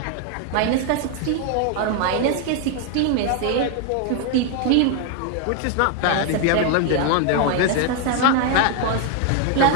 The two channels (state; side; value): different; both; correlation 0.01